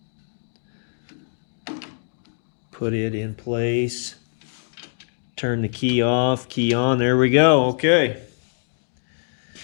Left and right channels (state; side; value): silent; right; digital silence